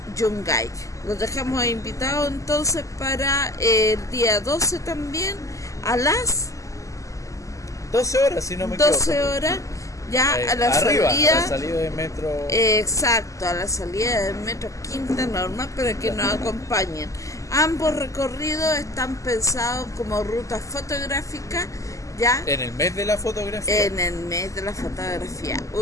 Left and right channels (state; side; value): late; right; 0.16 ms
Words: Yungay. Los dejamos invitados entonces para el día 12 también a las 12 horas, si no me equivoco. 12 horas. Ya a la arriba, salida, a la salida del metro. Exacto, a la salida del metro Quinta Normal para que nos acompañen. Ambos recorridos están pensados como rutas fotográficas, ya. En el mes de la fotografía. En el mes de la fotografía,